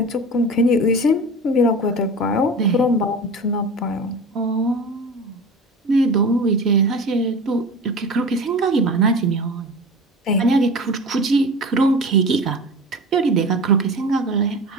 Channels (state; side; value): normal; both; correlation 0.33